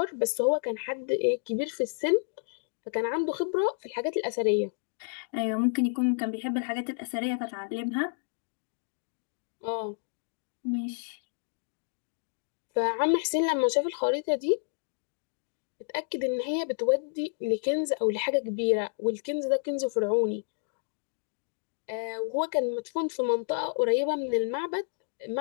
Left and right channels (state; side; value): silent; right; digital silence